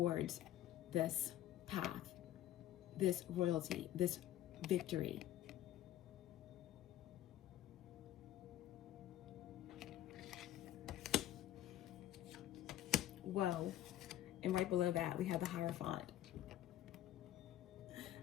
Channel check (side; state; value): right; quieter; 13.1 dB